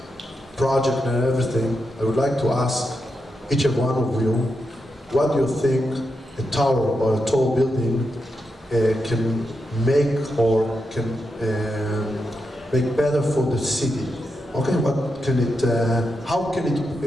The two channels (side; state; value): both; normal; correlation 0.86